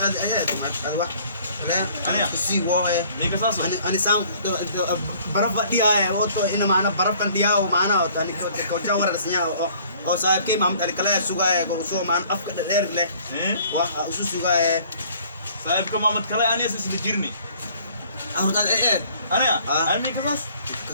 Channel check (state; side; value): inverted; both; correlation -0.55